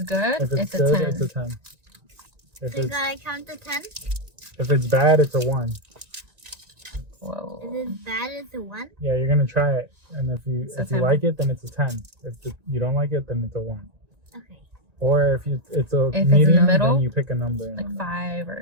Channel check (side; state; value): left; late; 1.9 ms